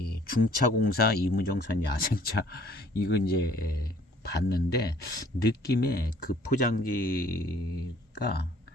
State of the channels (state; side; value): normal; both; correlation 0.57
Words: 중차공사 이무정산 야생차 이거 이제 봤는데 느낌에 그 포장지가